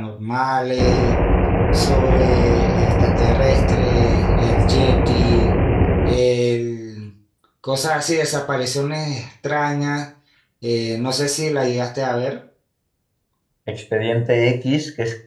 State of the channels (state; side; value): identical; both; correlation 1.00